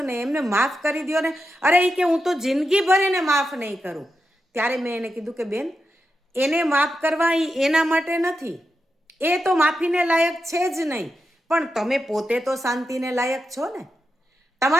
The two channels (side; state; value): both; normal; correlation 0.88